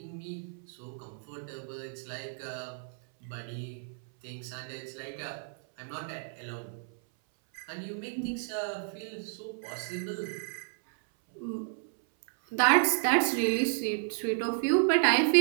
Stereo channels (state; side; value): silent; left; 57 dB below the other